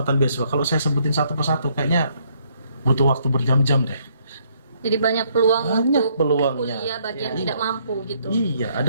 beasiswa. Kalau saya sebutin satu persatu kayaknya butuh waktu berjam-jam deh. Jadi banyak peluang Banyak untuk peluangnya. kuliah bagi yang Iya. tidak mampu gitu. Iya,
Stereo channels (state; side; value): inverted; both; correlation -0.69